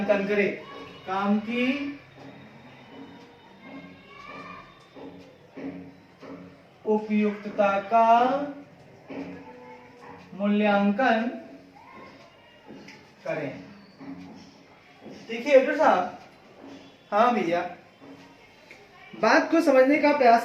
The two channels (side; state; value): both; identical; correlation 1.00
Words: करे। काम की उपयुक्तता का मूल्यांकन करें। देखिए डॉक्टर साहब, हाँ भैया, बात को समझने का